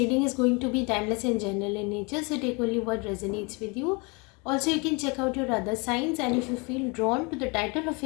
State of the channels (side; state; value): right; quieter; 30.0 dB